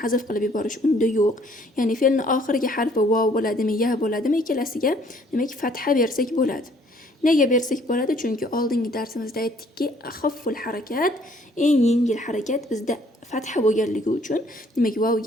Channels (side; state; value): both; normal; correlation 0.61